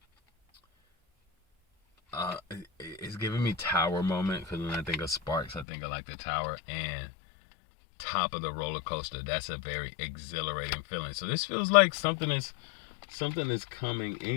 it's giving me tower moment, because when I think of Sparks, I think of like the tower and top of the roller coaster. That's a very exhilarating feeling. So this feels like something is coming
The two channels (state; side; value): drops out; right; at 5.7 s